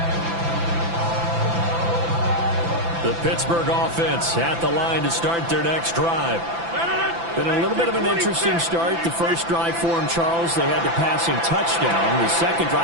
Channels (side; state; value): left; late; 5.9 ms